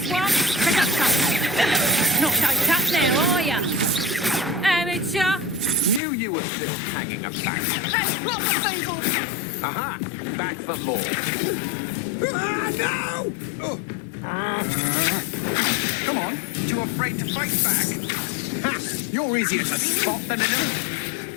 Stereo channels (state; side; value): drops out; right; at 6.0 s